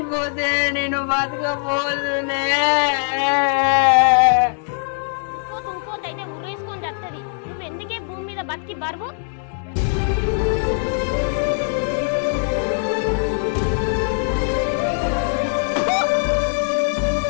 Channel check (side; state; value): right; silent; 62 dB below the other